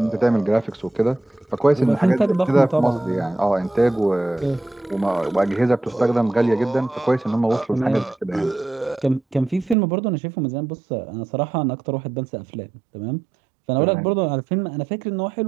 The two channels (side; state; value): left; drops out; at 9.8 s